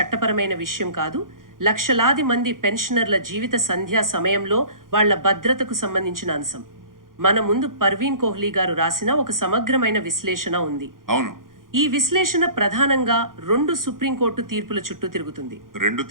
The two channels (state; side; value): late; left; 0.90 ms